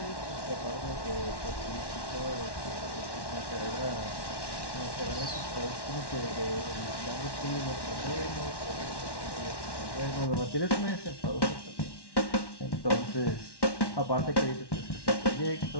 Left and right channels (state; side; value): late; right; 1.1 ms